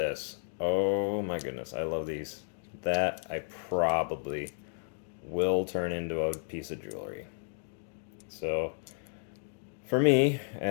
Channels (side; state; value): right; silent; digital silence